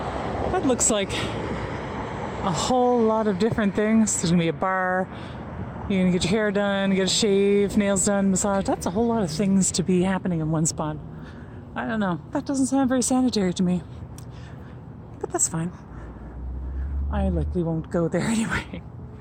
That looks like a whole lot of different things. There's gonna be a bar. You're gonna get your hair done, get a shave, nails done, massage. That's a whole lot of things to be happening in one spot. I don't know. That doesn't sound very sanitary to me. But that's fine. I likely won't go there anyway.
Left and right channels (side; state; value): both; identical; correlation 1.00